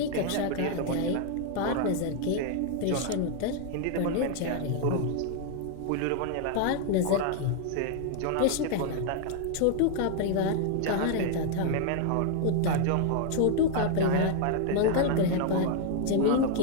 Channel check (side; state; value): both; different; correlation 0.00